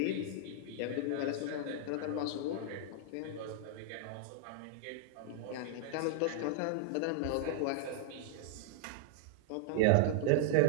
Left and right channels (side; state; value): both; different; correlation -0.01